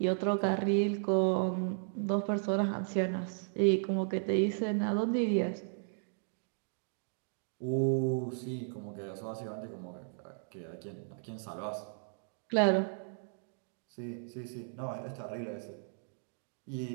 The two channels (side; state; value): left; silent; digital silence